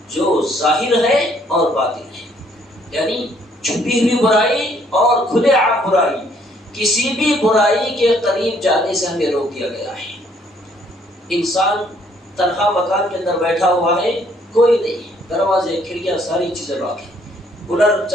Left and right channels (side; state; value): both; normal; correlation 0.65